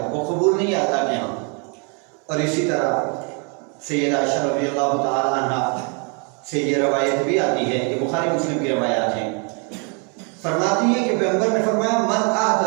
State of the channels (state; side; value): quieter; left; 36.1 dB